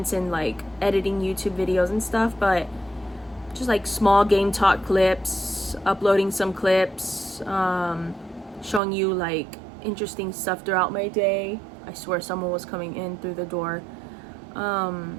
in like editing YouTube videos and stuff, but just like small game talk clips, uploading some clips, showing you like interesting stuff throughout my day. I swear someone was coming in through the door.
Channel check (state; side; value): drops out; left; at 8.8 s